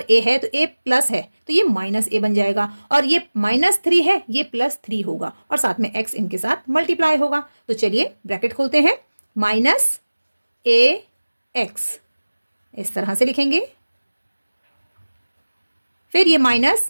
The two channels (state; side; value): inverted; both; correlation -1.00